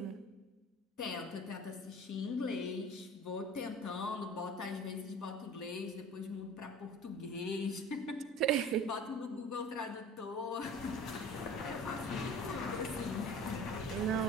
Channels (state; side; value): normal; both; correlation 0.41